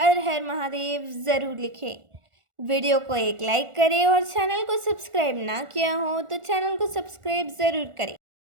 हर महादेव ज़रूर लिखें। वीडियो को एक लाइक करें और चैनल को सब्सक्राइब ना किया हो तो चैनल को सब्सक्राइब ज़रूर करें।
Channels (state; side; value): late; left; 1.4 ms